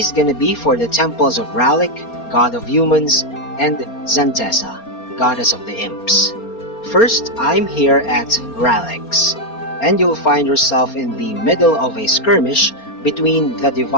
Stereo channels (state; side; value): late; right; 4.3 ms